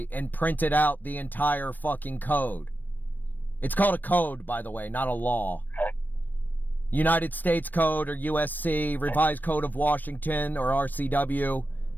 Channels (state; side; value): late; right; 0.089 ms